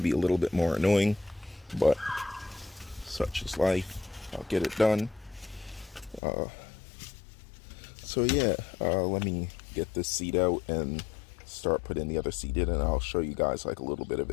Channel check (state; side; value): drops out; right; at 6.2 s